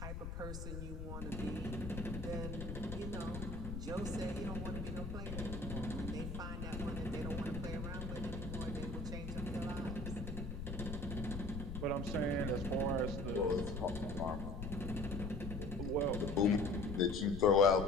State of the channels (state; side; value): noise; left; rumble, 6 dB below the sound